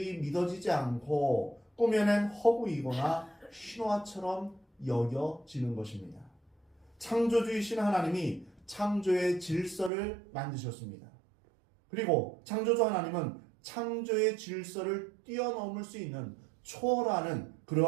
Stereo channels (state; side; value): drops out; left; at 9.9 s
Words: 믿어지지 않고 꾸며낸 허구이거나 신화처럼 여겨지는 것입니다. 창조주이신 하나님이 창조의 질서를 만드셨습니다. 그리고 창조주 하나님은 창조의 질서를 뛰어넘을 수 있는 초월하는